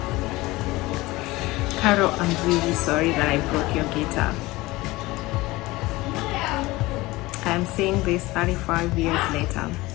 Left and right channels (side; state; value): right; quieter; 20.2 dB